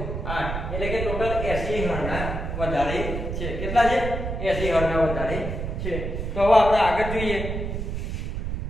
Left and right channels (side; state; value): right; noise; rumble, 4 dB below the sound